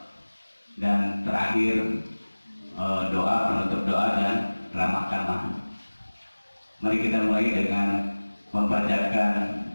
dan terakhir doa, penutup doa dan ramah tamah. Mari kita mulai dengan membacakan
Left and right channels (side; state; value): both; inverted; correlation -1.00